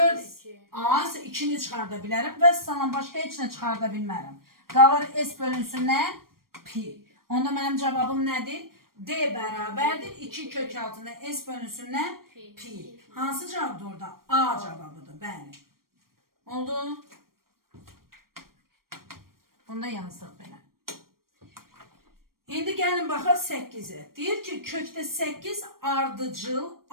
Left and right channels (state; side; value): late; left; 0.92 ms